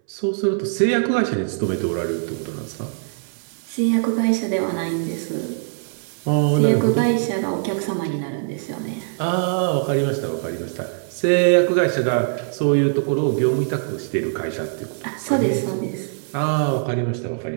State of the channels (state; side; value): silent; left; 61 dB below the other